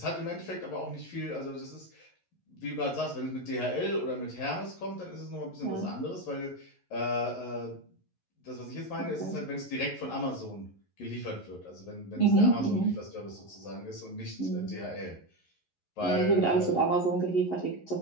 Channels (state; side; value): late; right; 11 ms